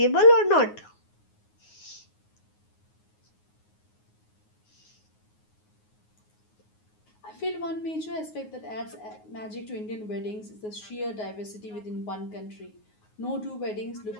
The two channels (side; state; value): right; late; 9.5 ms